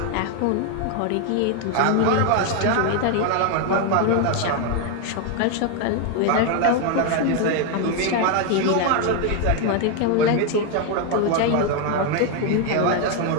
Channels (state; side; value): different; both; correlation 0.01